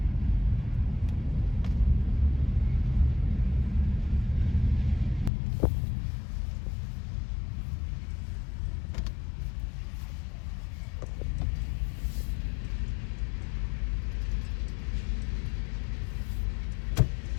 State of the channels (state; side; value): drops out; right; at 5.3 s